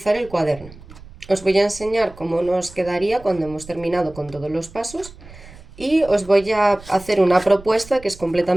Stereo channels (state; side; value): noise; right; rumble, 19 dB below the sound